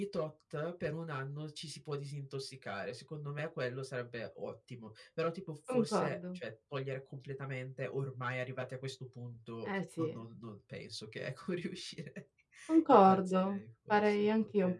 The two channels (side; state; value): both; identical; correlation 1.00